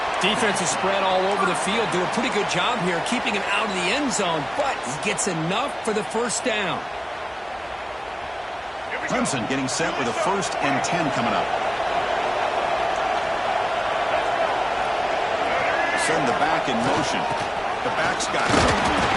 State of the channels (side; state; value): both; identical; correlation 1.00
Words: Defense is spread all over the field. Do a pretty good job here keeping him out of the end zone, but he gets enough for the first down. Clemson getting set with a 1st and 10 coming up. Send the back in motion. The back's got it.